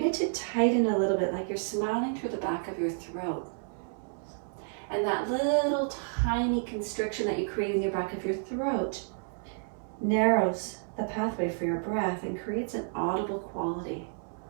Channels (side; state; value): left; silent; 57 dB below the other